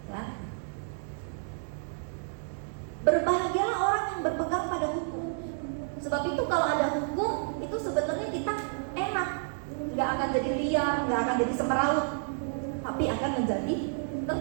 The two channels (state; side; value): silent; left; digital silence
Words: Ya. Berbahagialah orang yang berpegang pada hukum. Sebab itu kalau ada hukum, itu sebenarnya kita enak, nggak akan jadi liar, nggak akan jadi semeraut, tapi akan menjadi